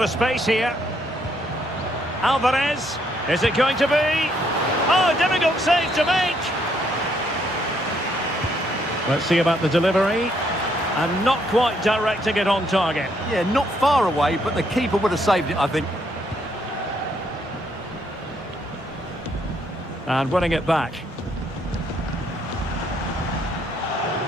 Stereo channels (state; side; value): normal; both; correlation 0.71